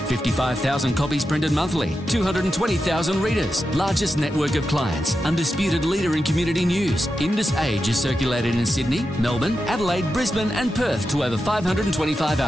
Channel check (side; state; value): both; normal; correlation 0.89